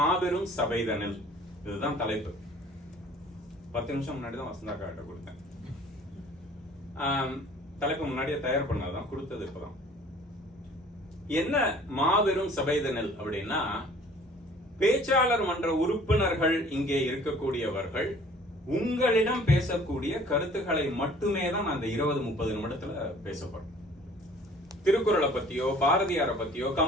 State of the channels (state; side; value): normal; both; correlation 0.52